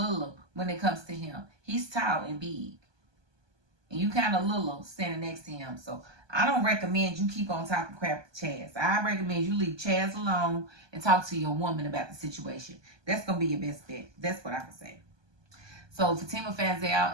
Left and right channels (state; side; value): late; left; 1.2 ms